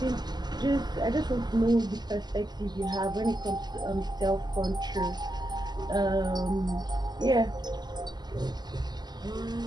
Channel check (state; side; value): late; left; 0.21 ms